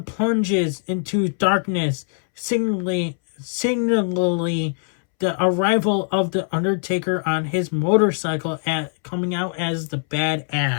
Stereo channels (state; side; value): silent; right; 64 dB below the other